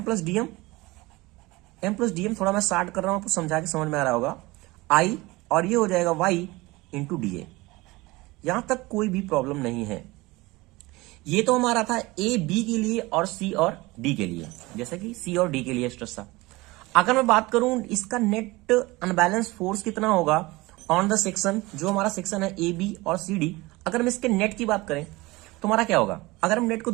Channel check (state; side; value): quieter; left; 21.6 dB